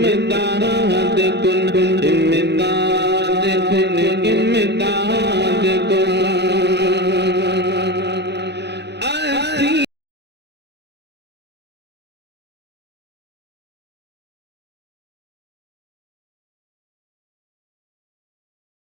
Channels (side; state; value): left; late; 0.49 ms